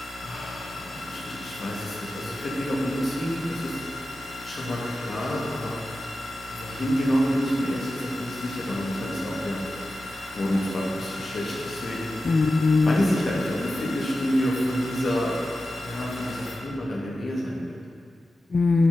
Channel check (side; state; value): both; normal; correlation 0.93